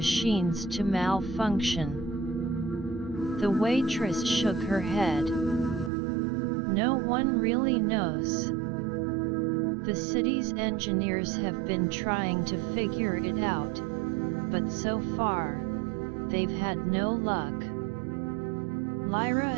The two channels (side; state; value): left; drops out; at 5.9 s